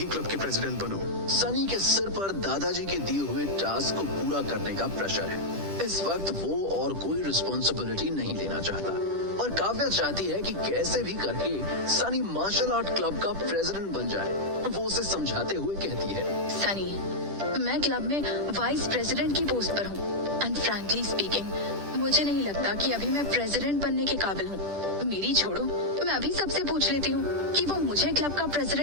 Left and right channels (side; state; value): left; late; 10 ms